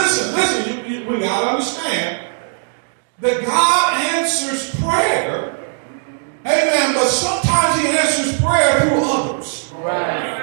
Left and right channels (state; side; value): silent; left; digital silence